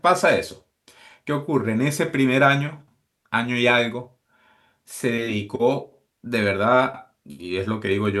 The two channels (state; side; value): identical; both; correlation 1.00